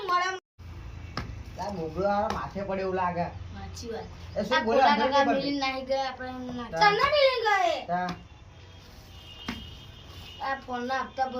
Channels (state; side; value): identical; both; correlation 1.00